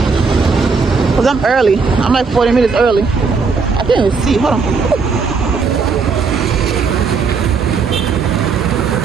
Cause I'm early. I'm like 40 minutes early. I can't even see. Hold on.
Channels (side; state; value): left; quieter; 5.0 dB